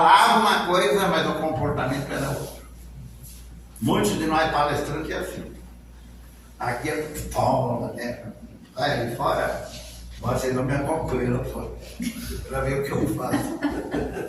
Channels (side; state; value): both; identical; correlation 1.00